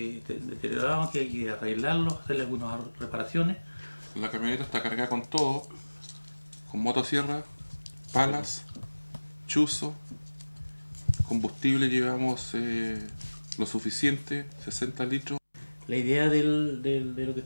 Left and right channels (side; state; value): both; inverted; correlation -1.00